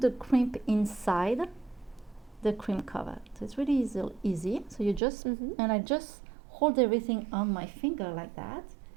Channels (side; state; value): left; drops out; at 5.0 s